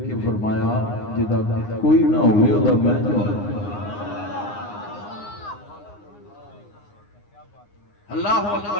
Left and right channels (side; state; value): right; late; 9.7 ms